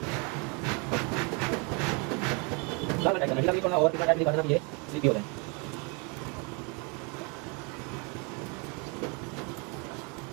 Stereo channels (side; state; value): left; quieter; 31.9 dB